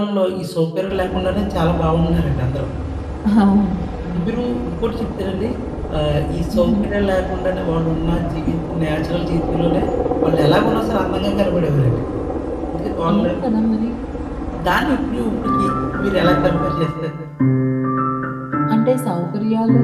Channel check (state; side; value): identical; both; correlation 1.00